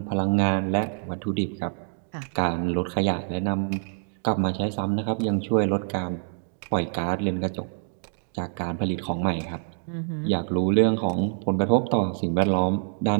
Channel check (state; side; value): silent; left; 58 dB below the other